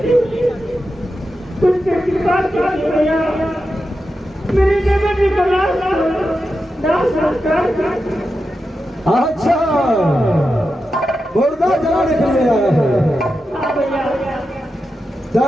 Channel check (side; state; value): both; normal; correlation 0.89